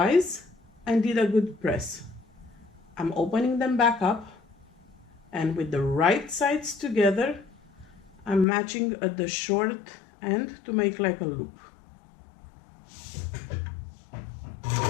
and did a good press. I'm opening them back up, and with the right sides together, I'm matching at the short end to make like a loop.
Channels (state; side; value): drops out; right; at 8.5 s